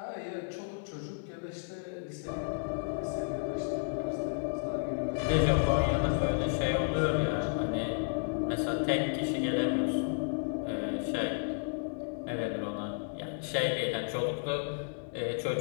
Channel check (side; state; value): right; silent; digital silence